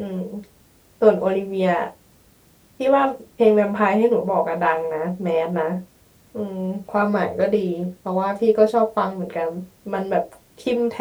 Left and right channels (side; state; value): both; identical; correlation 1.00